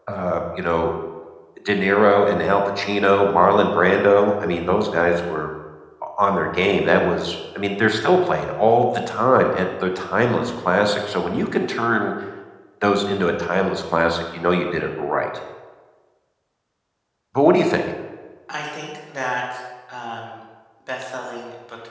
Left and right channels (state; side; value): identical; both; correlation 1.00